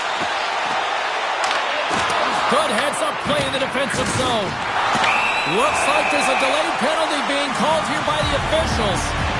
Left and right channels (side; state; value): both; identical; correlation 1.00